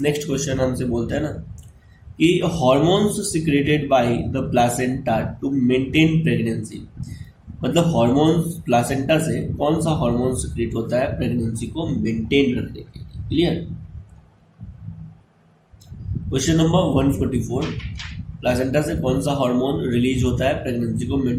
नेक्स्ट क्वेश्चन हमसे बोलते हैं ना कि hormones secreted by the placenta to maintain pregnancy, मतलब हॉर्मोन्स प्लासेंटा से कौन सा हार्मोन सिक्रेट होता है प्रेगनेंसी को मेंटेन रखने के लिए? क्लियर। क्वेश्चन नंबर 144, प्लासेंटा से कौन सा हार्मोन रिलीज होता है प्रेगनेंसी को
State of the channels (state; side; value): identical; both; correlation 1.00